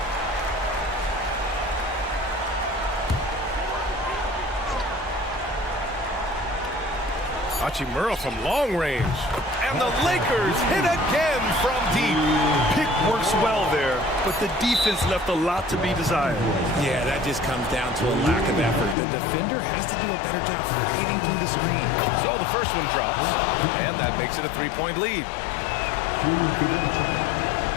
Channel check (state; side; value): drops out; right; at 18.9 s